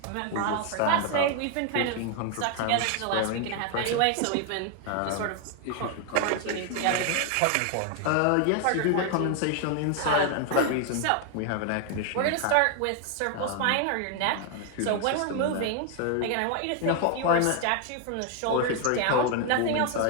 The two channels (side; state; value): both; different; correlation 0.00